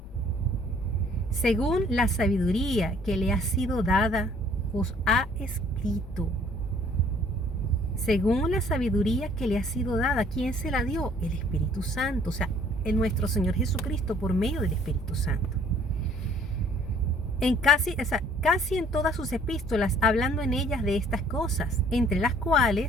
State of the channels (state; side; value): normal; both; correlation 0.58